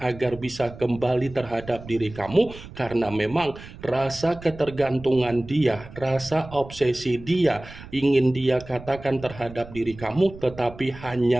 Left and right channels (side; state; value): right; noise; rumble, 16 dB below the sound